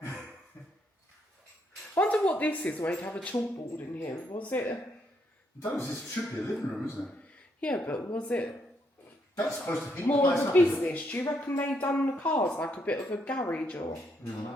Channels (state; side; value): normal; both; correlation 0.75